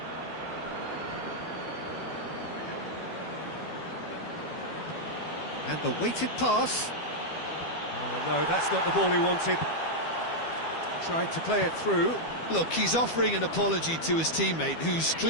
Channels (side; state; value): right; late; 12 ms